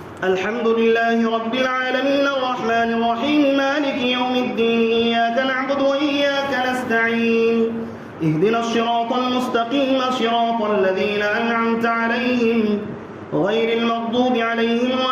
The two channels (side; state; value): both; identical; correlation 1.00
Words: الحمد لله رب العالمين الرحمن الرحيم مالك يوم الدين إياك نعبد وإياك نستعين اهدنا الصراط المستقيم صراط الذين أنعمت عليهم غير المغضوب عليهم